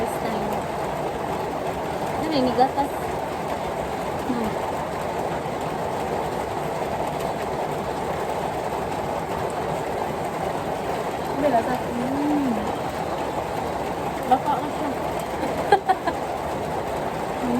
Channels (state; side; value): identical; both; correlation 1.00